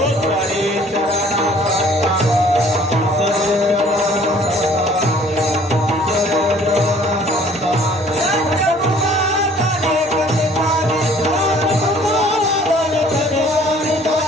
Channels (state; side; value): normal; both; correlation 0.55